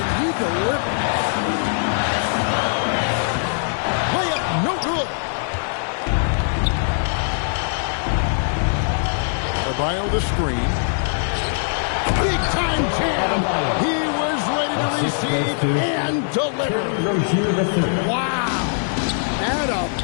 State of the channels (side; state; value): right; silent; digital silence